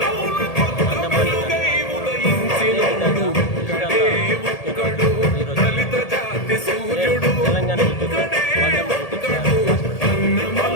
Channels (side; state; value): right; late; 1.8 ms